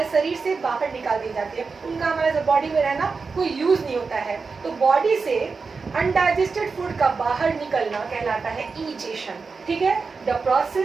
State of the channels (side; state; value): left; quieter; 4.7 dB